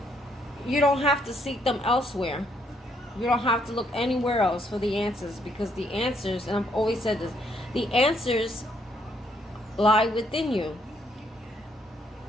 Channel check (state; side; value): normal; both; correlation 0.71